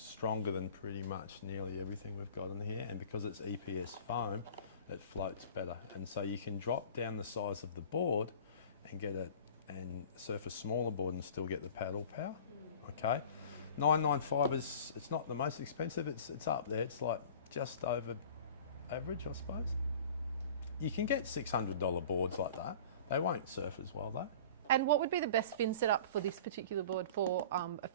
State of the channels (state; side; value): inverted; both; correlation -0.42